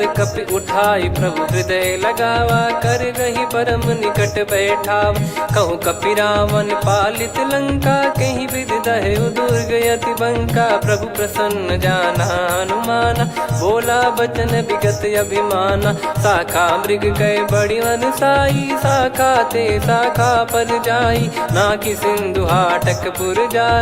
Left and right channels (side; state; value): both; identical; correlation 1.00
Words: कपि उठाई प्रभु हृदय लगावा, कर गही परम निकट बैठावा, कहूँ कपि रावण पालित लंका, कहीं विद दहु दुर्ग यति बंका, प्रभु प्रसन्न जाना हनुमाना, बोला बचन विगत अभिमाना, शाखा मृग कह बड़ी मनसाई, शाखा ते शाखा पर जाई, ना कि सिंधु हाटक पुर